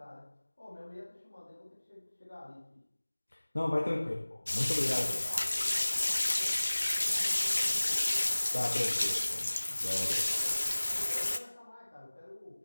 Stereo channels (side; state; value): both; inverted; correlation -1.00